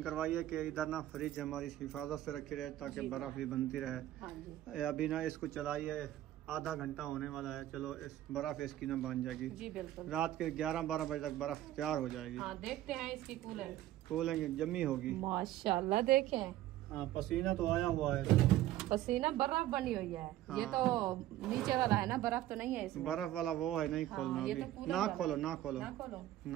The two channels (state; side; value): quieter; left; 14.0 dB